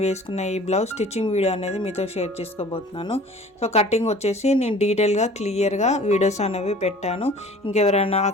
వేసుకున్న ఈ బ్లౌజ్ స్టిచ్చింగ్ వీడియో అనేది మీతో షేర్ చేసుకోబోతున్నాను. సో కటింగ్ వచ్చేసి నేను డీటెయిల్గా క్లియర్గా వీడియోస్ అనేవి పెట్టాను. ఇంకెవరైనా ఆ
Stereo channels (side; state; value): both; normal; correlation 0.47